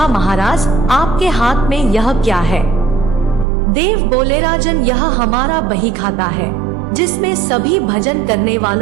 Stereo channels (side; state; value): left; drops out; at 3.5 s